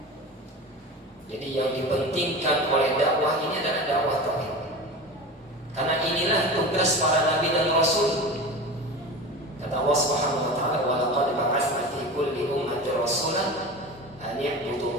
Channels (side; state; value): both; normal; correlation 0.30